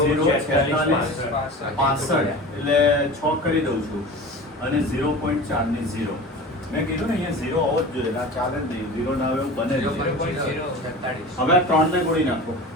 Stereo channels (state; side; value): normal; both; correlation 0.35